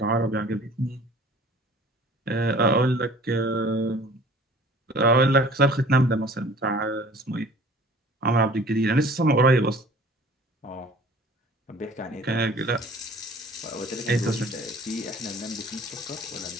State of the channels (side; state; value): both; normal; correlation 0.49